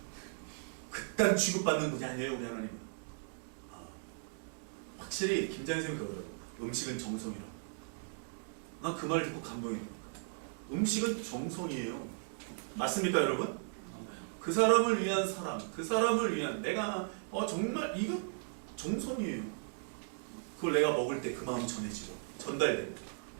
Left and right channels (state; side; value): silent; left; digital silence